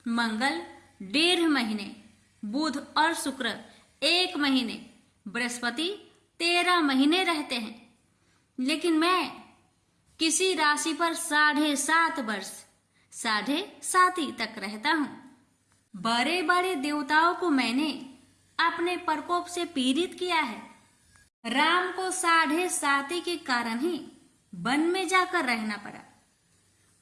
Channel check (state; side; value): identical; both; correlation 1.00